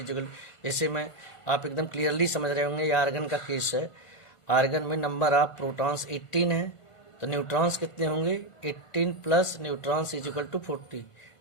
जैसे मैं आप एकदम क्लियरली समझ रहे होंगे, ये आर्गन का केस है। आर्गन में नंबर ऑफ प्रोटॉन्स 18 है, तो न्यूट्रॉन्स कितने होंगे, 18 plus neutrons is equal to 40।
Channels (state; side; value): late; right; 1.5 ms